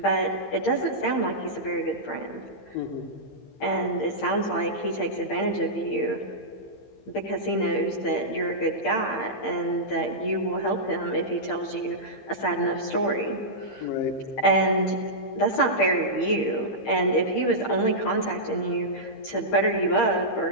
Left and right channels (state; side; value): late; right; 15 ms